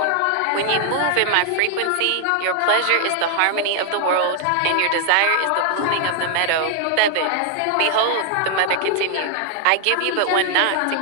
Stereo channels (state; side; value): different; both; correlation 0.00